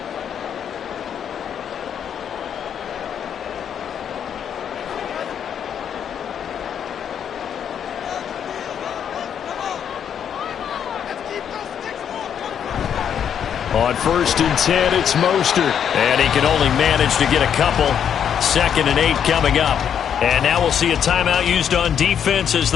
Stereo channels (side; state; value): right; quieter; 8.5 dB